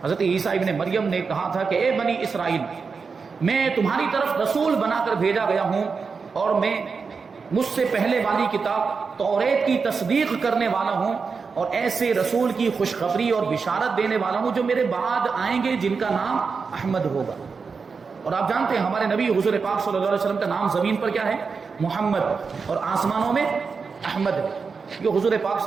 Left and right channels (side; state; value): left; quieter; 5.1 dB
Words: حضرت عیسیٰ ابن مریم نے کہا تھا کہ اے بنی اسرائیل، میں تمہاری طرف رسول بنا کر بھیجا گیا ہوں اور میں مجھ سے پہلے والی کتاب توریت کی تصدیق کرنے والا ہوں اور ایسے رسول کی خوشخبری اور بشارت دینے والا ہوں جو میرے بعد آئیں گے جن کا نام احمد ہوگا. اور آپ جانتے ہیں ہمارے نبی حضور پاک صلی اللہ علیہ وسلم کا نام زمین پر کیا ہے؟ محمد، اور آسمانوں میں احمد ہے. یہ حضور پاک